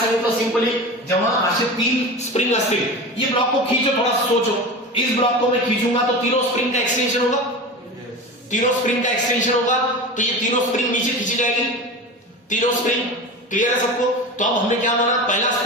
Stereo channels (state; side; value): normal; both; correlation 0.29